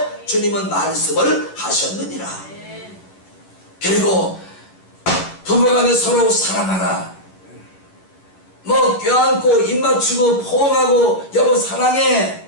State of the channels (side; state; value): right; late; 11 ms